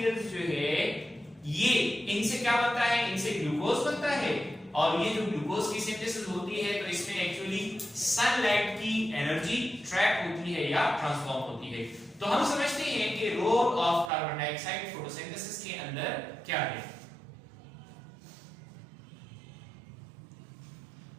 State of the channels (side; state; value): left; drops out; at 14.1 s